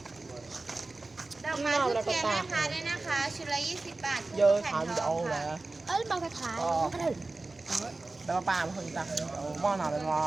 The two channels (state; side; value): quieter; left; 3.3 dB